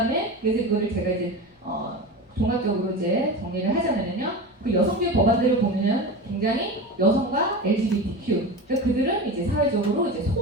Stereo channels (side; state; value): both; normal; correlation 0.27